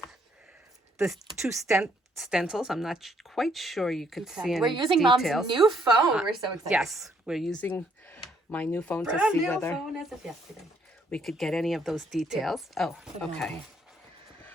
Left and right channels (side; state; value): both; normal; correlation 0.69